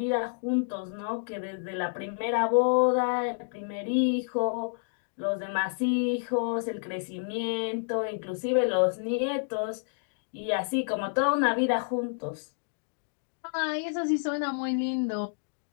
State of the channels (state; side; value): silent; right; digital silence